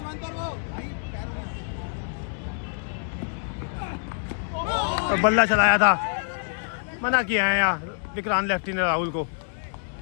और बल्ला चलाया था, मना किया है यहाँ विक्रांत लेफ्टी ने राहुल को।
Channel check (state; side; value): silent; right; 61 dB below the other